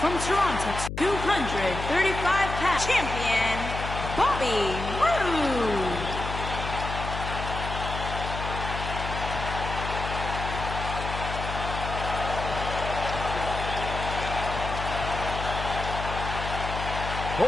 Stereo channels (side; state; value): left; noise; hum, 6 dB below the sound